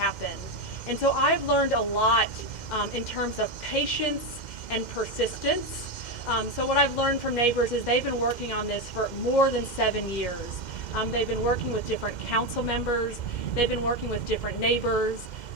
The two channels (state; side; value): late; right; 2.1 ms